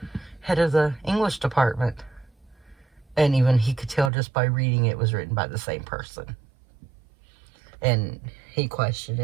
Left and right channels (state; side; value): drops out; left; at 4.1 s